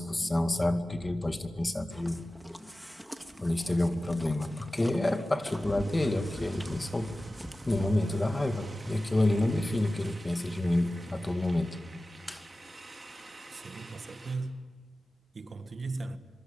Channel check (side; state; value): both; normal; correlation 0.96